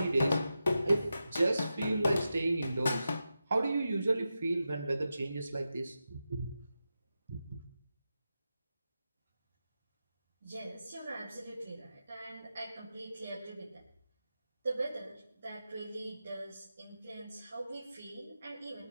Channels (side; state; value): both; inverted; correlation -0.90